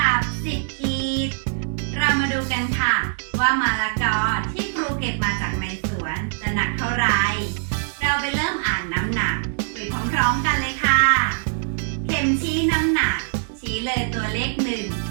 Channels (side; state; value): left; silent; digital silence